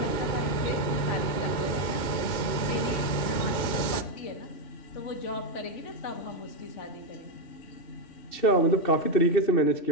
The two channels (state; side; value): late; right; 2.3 ms